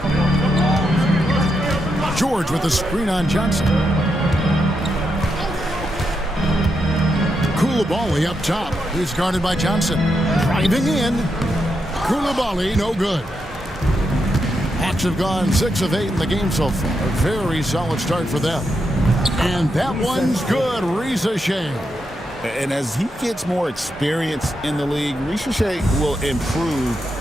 George with the screen on Johnson. Koulibaly up top. He's guarded by Johnson. Driving in. Koulibaly, no good. Hawks have gone 6 of 8 in the game so far. A very solid start for them. And that one's good. Rizichet. And as he gets more experience in the league, Rizichet will improve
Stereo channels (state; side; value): normal; both; correlation 0.83